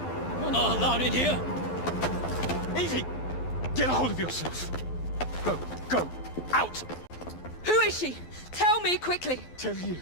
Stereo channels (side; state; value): right; late; 12 ms